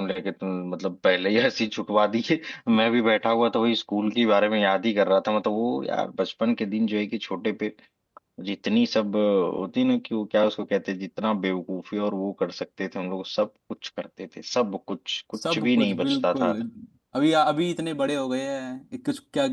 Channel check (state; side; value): identical; both; correlation 1.00